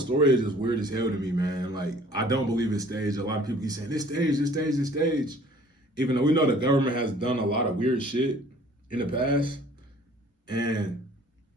is just weird as hell to me, man. Like, I don't believe it's staged. A lot of people keep saying, this stage. Even though we know the government has done a lot of weird shit in the past. And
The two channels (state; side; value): normal; both; correlation 0.53